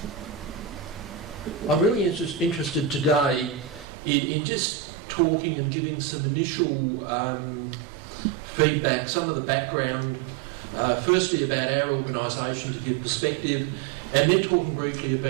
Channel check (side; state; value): left; drops out; at 3.9 s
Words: I'm really interested today in just talking and giving some initial feedback, some of the background, firstly about our organisation to give perspective, and then talking briefly